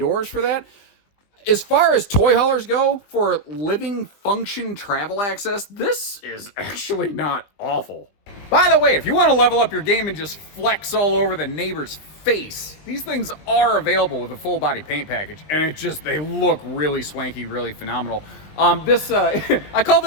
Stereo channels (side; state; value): right; late; 20 ms